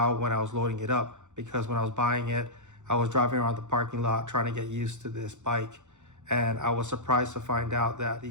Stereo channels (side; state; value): left; late; 0.84 ms